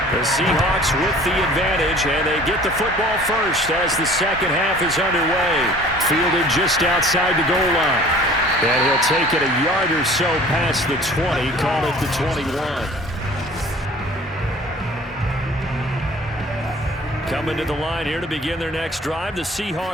The Seahawks with the advantage, and they get the football first as the second half is underway. Fielded just outside the goal line. And he'll take it a yard or so past the 20, call it the 21. Coming to the line here to begin their next drive, the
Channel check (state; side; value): normal; both; correlation 0.48